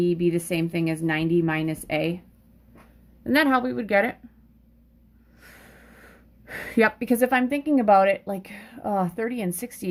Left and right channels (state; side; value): identical; both; correlation 1.00